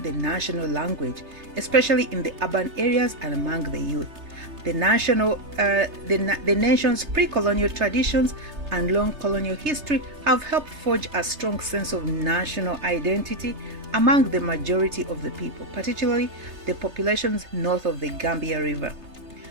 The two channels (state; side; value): late; left; 3.3 ms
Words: national language, especially in the urban areas and among the youth. The nation's pre-colonial traditions and long colonial history have helped forge a strong sense of national identity among the majority of the people, particularly the populations north of the Gambia River,